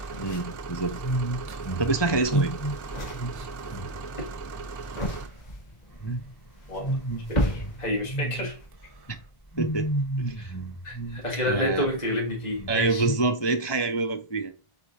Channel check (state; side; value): late; right; 1.2 ms